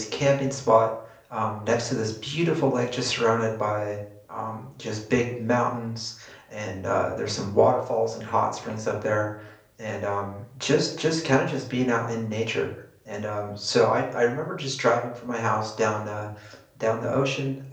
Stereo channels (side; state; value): both; identical; correlation 1.00